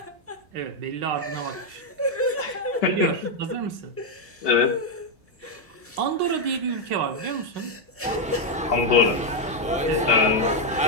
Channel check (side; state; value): both; normal; correlation 0.02